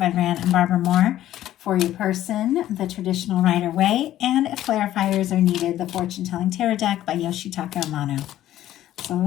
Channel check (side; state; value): right; quieter; 13.1 dB